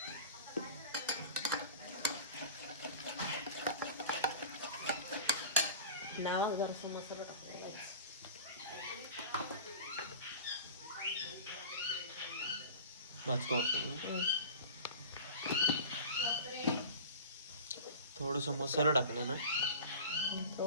नाव जरासा मसाला टाकायला. भाजको थोडस मसाला टाकला ना.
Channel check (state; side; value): inverted; both; correlation -0.38